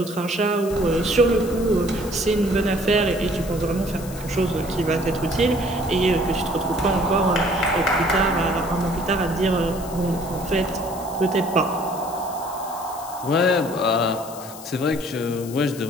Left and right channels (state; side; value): noise; left; hiss, 16 dB below the sound